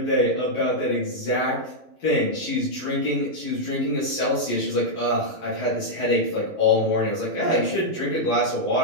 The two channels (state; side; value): late; right; 11 ms